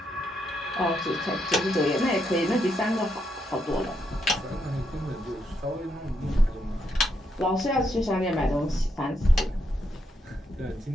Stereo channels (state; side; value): normal; both; correlation 0.79